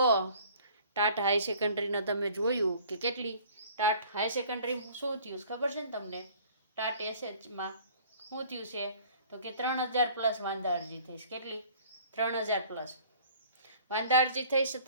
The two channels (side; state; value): both; inverted; correlation -0.51